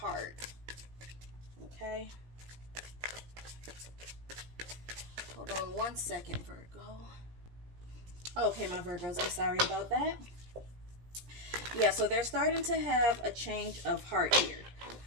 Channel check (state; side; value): late; left; 17 ms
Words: Okay, hold on one second, Virgo. Okay, my Virgos, I'm sorry about that. Yeah, so they're starting to have a change of heart here.